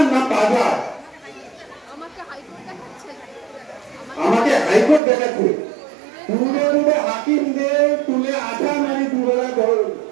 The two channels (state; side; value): drops out; left; at 5.0 s